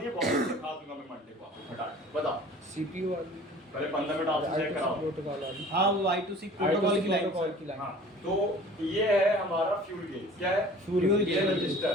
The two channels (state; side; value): normal; both; correlation 0.46